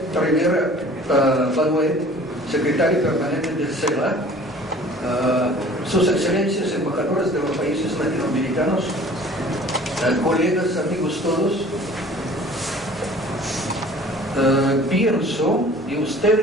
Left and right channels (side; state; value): both; normal; correlation 0.48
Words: Rivera Manuel, secretario permanente del CELA, sus excelencias embajadores de los países latinoamericanos, colegas, amigos todos. Pienso, y